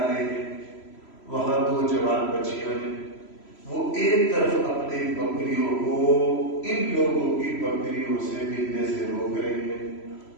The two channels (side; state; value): right; late; 3.0 ms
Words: رہے ہیں، وہاں 2 جوان بچیاں ہیں، وہ ایک طرف اپنی بکریوں کو ان لوگوں کی بکریوں سے ملنے سے روک رہی ہیں۔